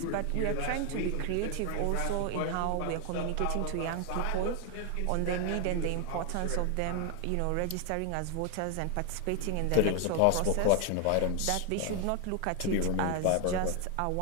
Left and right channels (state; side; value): different; both; correlation 0.01